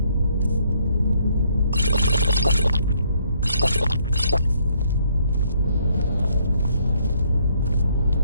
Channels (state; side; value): inverted; both; correlation -0.68